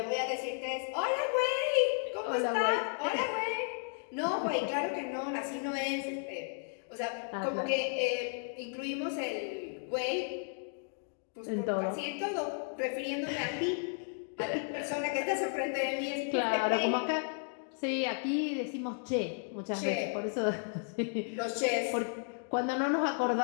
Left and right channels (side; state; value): right; silent; 55 dB below the other